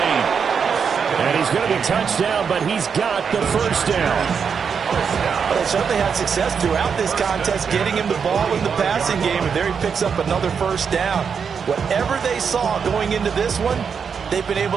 And he's going to be touched down, but he's got the first down. Well, they certainly had success throughout this contest, getting him the ball in the passing game, and there he picks up another first down. Whatever they saw going into this one, they've been able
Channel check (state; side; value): quieter; left; 6.4 dB